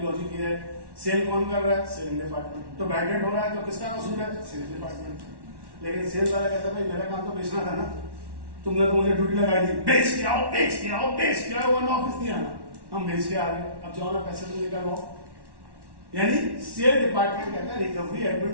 ये है, सेल कौन कर रहा है? Selling department. तो बैड डेट हो रहा है तो किसका कसूर है? Sales department. लेकिन सेल्स वाला कहता है भाई मेरा काम तो बेचना था ना, तुमने तो मुझे ड्यूटी लगाई थी, बेच के आओ, बेच के आओ, बेच के आओ। वन ऑफिस नहीं आना, हम बेच के आ रहे हैं, अब जाओ ना पैसे तो निकलवाओ। यानी सेल डिपार्टमेंट कहता है रिकवरी एडमिन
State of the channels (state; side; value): late; left; 1.1 ms